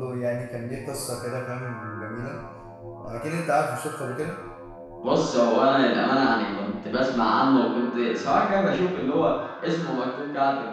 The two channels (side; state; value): both; identical; correlation 1.00